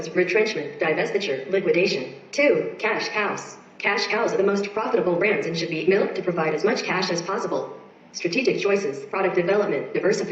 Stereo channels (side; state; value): both; identical; correlation 1.00